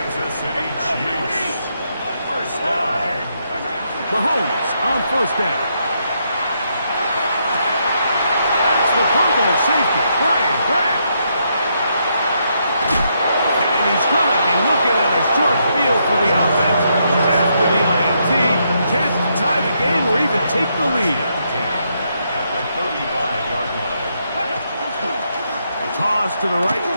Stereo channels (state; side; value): inverted; both; correlation -0.77